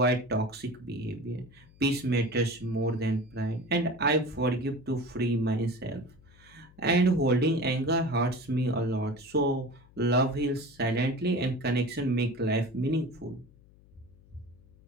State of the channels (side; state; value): left; noise; hum, 26 dB below the sound